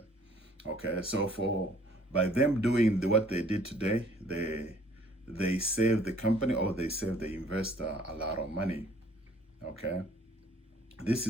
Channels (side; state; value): both; normal; correlation 0.58